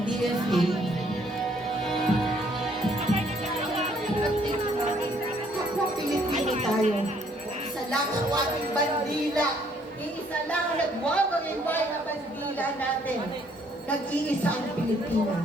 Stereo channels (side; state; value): both; normal; correlation 0.65